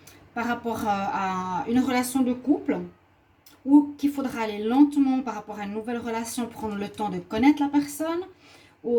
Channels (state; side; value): identical; both; correlation 1.00